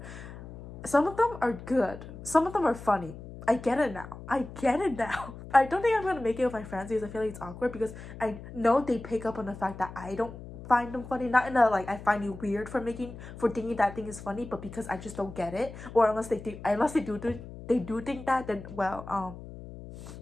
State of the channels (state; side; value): noise; left; hum, 13 dB below the sound